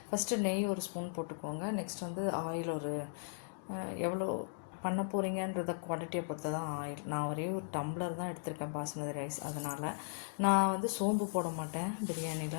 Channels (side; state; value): right; silent; digital silence